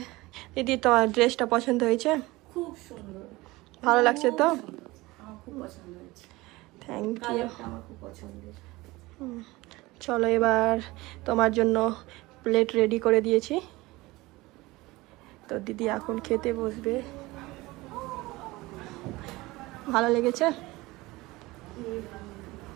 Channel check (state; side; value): quieter; left; 20.7 dB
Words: দিদি তোমার ড্রেসটা পছন্দ হয়েছে? খুব সুন্দর, ভালো লাগছে তো? আমার খুব পছন্দ হয়েছে। Thank you. আমার খুব পছন্দের। চলো এবার তোমার জন্য প্লেট রেডি করে দিয়েছি, তো দিদি এখন খেতে বসবে। ভালো লেগেছে?